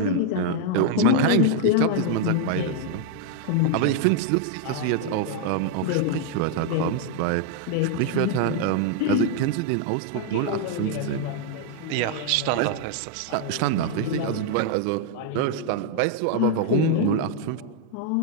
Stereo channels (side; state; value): both; different; correlation 0.00